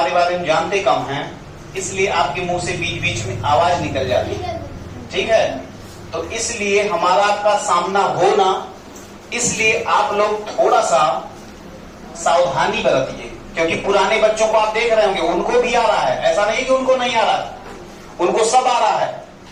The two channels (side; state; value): both; identical; correlation 1.00